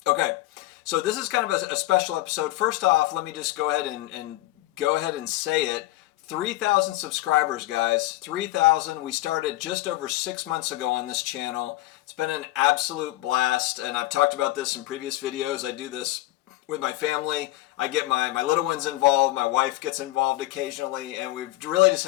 Okay. So this is kind of a special episode. First off, let me just go ahead and say it. 3,000 subscribers, guys. 3,000. We started just over 6 months ago on this channel. It's been an absolute blast, and I've talked about this in previous videos. I do this with my family. I get my little ones involved. My wife gets involved occasionally, and we've really just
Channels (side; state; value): right; quieter; 17.6 dB